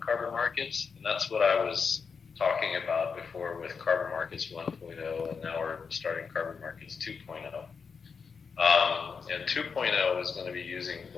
markets, and that's what I was talking about before with Carbon Markets 1.0, and now we're starting Carbon Markets 2.0. And 2.0 is going to be using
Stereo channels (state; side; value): quieter; right; 5.7 dB